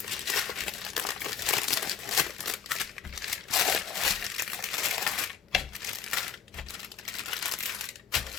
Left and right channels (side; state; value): right; quieter; 7.5 dB